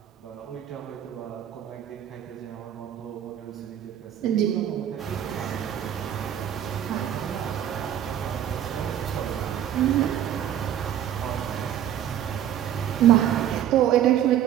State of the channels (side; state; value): left; quieter; 10.6 dB